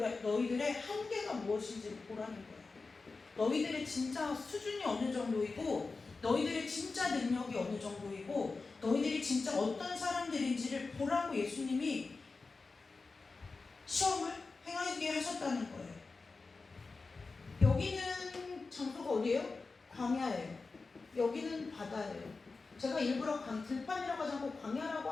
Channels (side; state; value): right; quieter; 4.0 dB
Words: 너희들의 한계가 무엇인지 보라는 거예요. 너희들의 진짜 수준이 어느 정도이고 너희들의 진짜 능력이 어느 정도이고 너희들이 진짜 어떤 사람들인지를 보라고 예수님이 시험을 행하게 하셨다는 거예요. 여기는 장소가 어디예요? 광야예요. 여기는 바다예요. 제가 일부러 들판이라고 하지 않고 광야라고